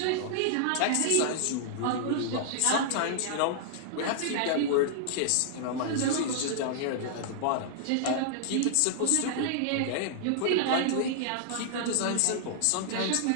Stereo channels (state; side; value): different; both; correlation -0.01